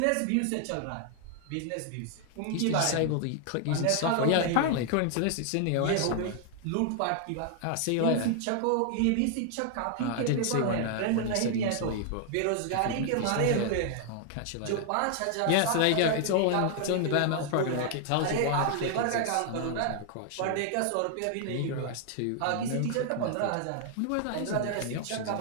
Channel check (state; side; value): different; both; correlation 0.00